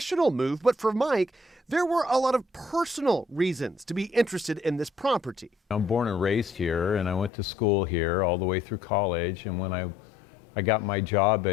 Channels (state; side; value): drops out; right; at 7.3 s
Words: move, but for Mike, there were a lot of personal reasons to be interested in this property. I'm born and raised here, and I went to school here all the way through college. And when I got my job